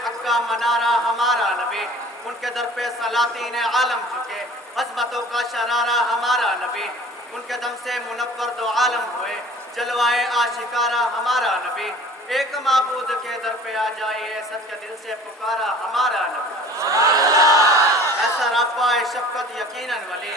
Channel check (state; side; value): normal; both; correlation 0.46